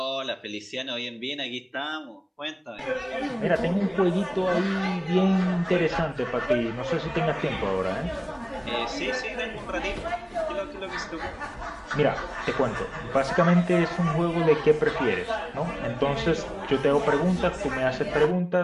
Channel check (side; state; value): both; identical; correlation 1.00